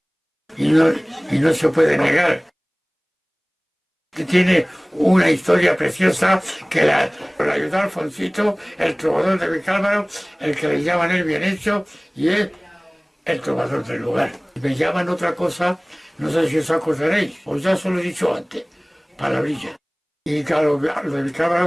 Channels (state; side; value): identical; both; correlation 1.00